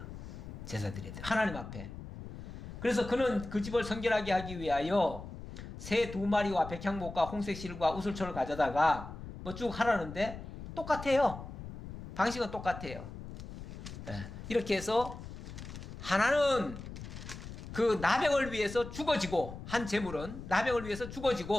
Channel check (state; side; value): noise; left; rumble, 11 dB below the sound